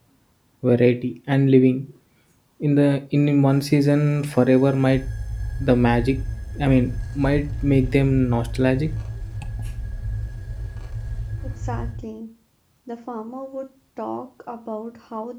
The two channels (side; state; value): both; identical; correlation 1.00